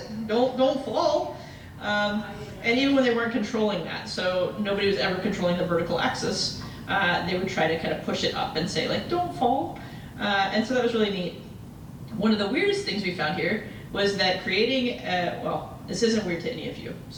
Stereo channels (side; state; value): both; identical; correlation 1.00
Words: don't fall. And even when they weren't controlling that, so nobody was ever controlling the vertical axis, they would try to kind of push it up and say, like, don't fall. And so that was really neat. One of the weirdest things we found here was that creating, well, this isn't weird to any of you.